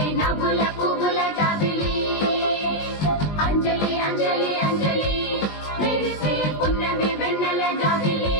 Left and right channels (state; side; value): late; right; 20 ms